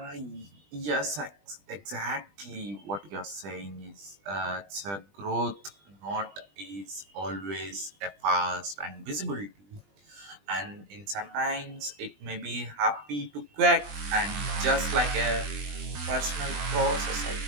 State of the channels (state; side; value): late; left; 20 ms